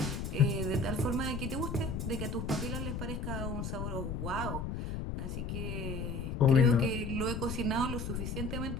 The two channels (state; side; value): noise; left; rumble, 4 dB below the sound